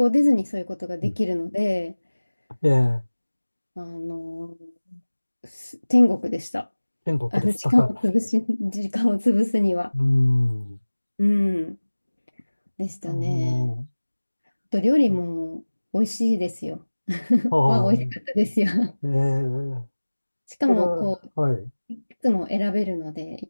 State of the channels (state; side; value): inverted; both; correlation -1.00